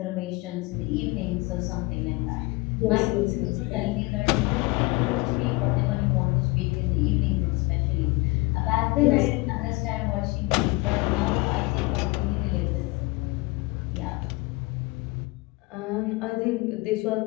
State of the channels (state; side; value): quieter; right; 23.7 dB